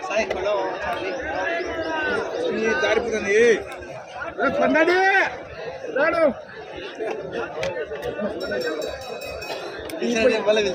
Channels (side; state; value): both; identical; correlation 1.00